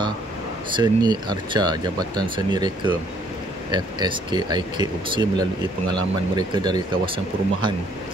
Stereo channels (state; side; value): normal; both; correlation 0.64